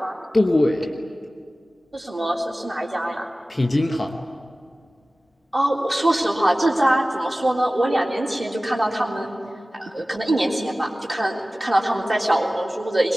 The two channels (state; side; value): normal; both; correlation 0.97